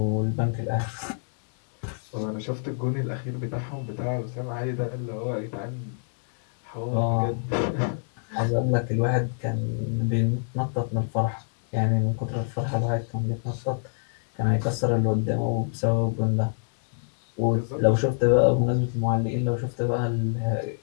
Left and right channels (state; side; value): silent; right; 61 dB below the other